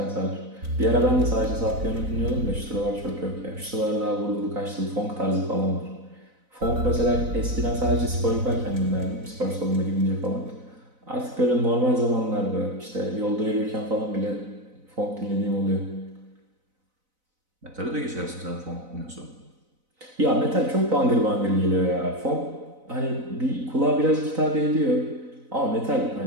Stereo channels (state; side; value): late; left; 4.0 ms